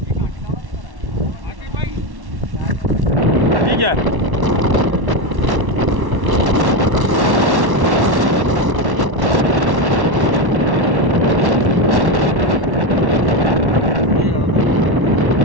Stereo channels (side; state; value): left; late; 1.1 ms